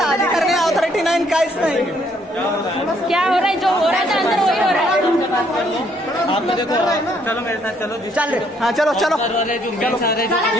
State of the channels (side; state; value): both; normal; correlation 0.68